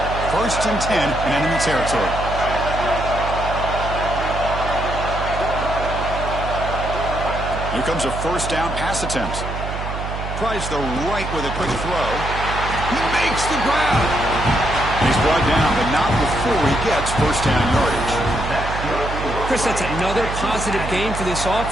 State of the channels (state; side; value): noise; right; hum, 6 dB below the sound